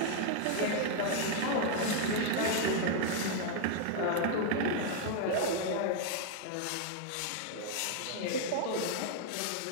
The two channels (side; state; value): both; different; correlation 0.00